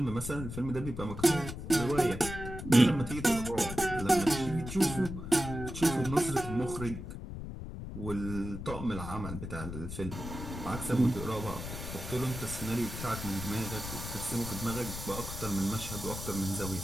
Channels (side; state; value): left; noise; rumble, 8 dB below the sound